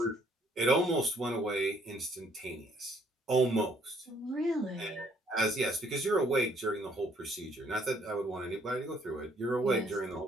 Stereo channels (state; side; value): normal; both; correlation 0.65